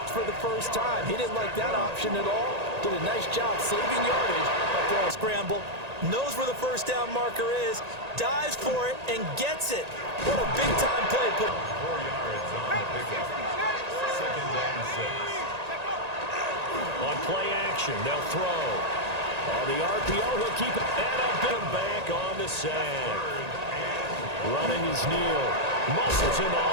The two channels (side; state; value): left; late; 1.8 ms